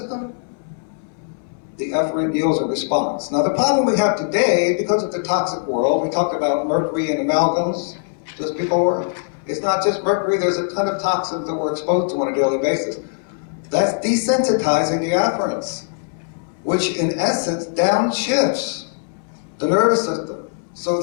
The efferent yields a response. Now the problem we have today, because of the toxic world, we talked about mercury and amalgams just before. It's not just mercury, there's a ton of toxins that we're exposed to on a daily basis. That's desensitizing the afferents, which in essence downshifts the nervous system. So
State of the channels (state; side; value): silent; right; 65 dB below the other